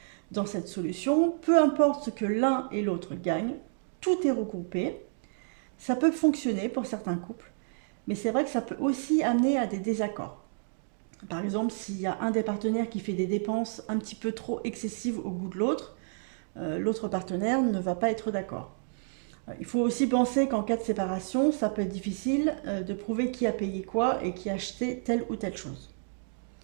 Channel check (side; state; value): left; silent; digital silence